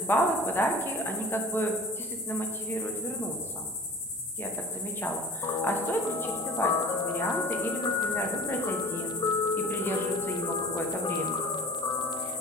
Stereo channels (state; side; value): normal; both; correlation 0.42